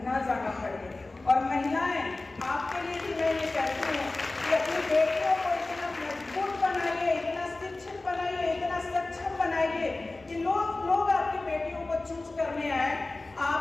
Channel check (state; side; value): quieter; right; 3.1 dB